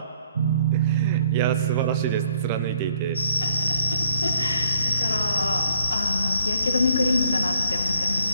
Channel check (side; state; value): both; inverted; correlation -0.67